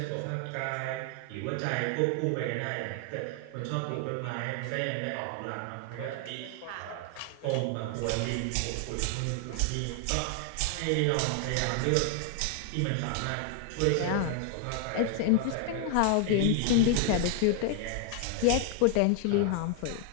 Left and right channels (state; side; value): different; both; correlation 0.00